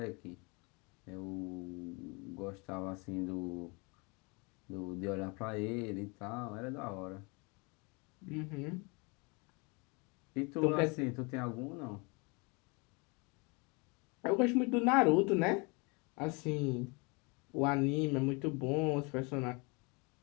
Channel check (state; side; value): quieter; right; 30.2 dB